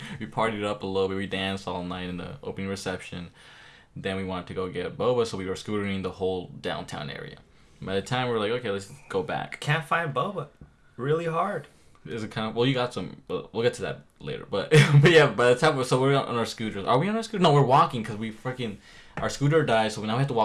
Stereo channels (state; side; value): identical; both; correlation 1.00